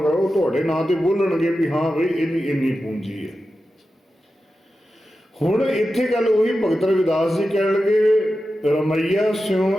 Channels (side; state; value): both; normal; correlation 0.92